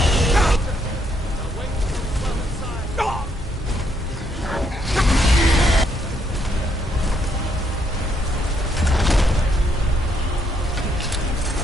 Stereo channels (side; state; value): both; normal; correlation 0.73